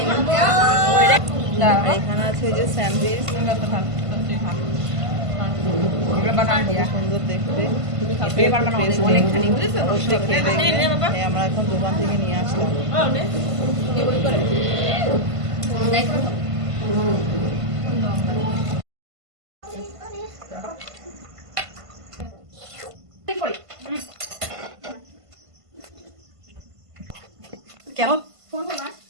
আর এখানে আছে যে স্যান্ডউইচ, সুন্দর দেখতে। অবশ্যই খেয়ে দেখবে। আমরা এখন দোকান থেকে নিয়ে আসলাম। কেমন?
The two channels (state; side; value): late; left; 1.5 ms